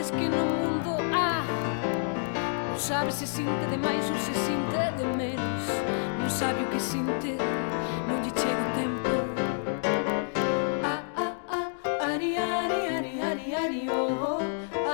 que no mundo há. Non sabe se sinte de máis ou se sinte de menos. Non sabe o que sinte, non lle chega o tempo. Ari, ari, ari, ari, ari, oh.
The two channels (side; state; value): right; silent; digital silence